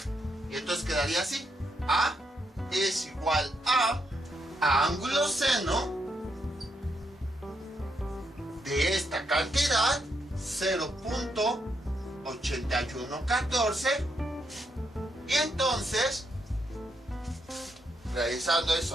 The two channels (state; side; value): normal; both; correlation 0.79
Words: Y entonces quedaría así. A es igual a ángulo seno de esta cantidad, 0.8114. Y entonces, realizando esa